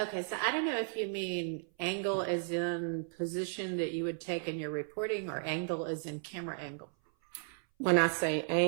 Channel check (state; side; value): silent; left; 55 dB below the other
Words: so I don't know if you mean angle as in position that you would take in your reporting or angle as in camera angle. When I say